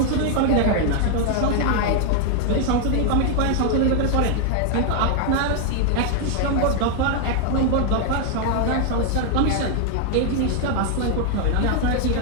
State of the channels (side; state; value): both; different; correlation 0.00